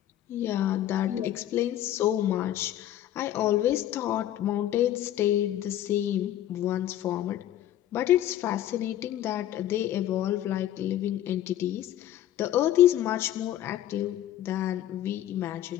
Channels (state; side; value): quieter; right; 12.3 dB